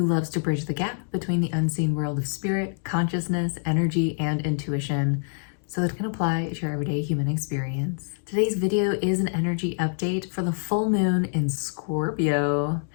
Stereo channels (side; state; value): right; silent; digital silence